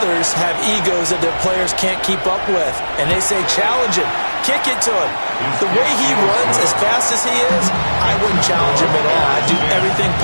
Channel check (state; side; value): inverted; both; correlation -1.00